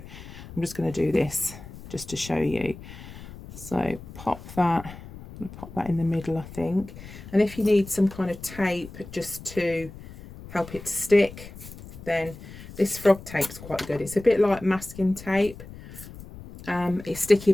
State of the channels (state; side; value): noise; left; rumble, 15 dB below the sound